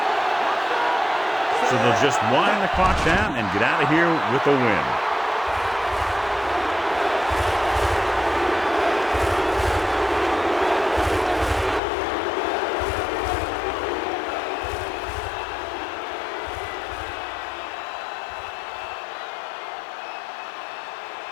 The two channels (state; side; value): drops out; right; at 11.8 s